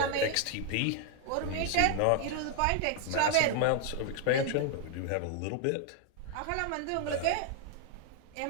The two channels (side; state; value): both; different; correlation 0.00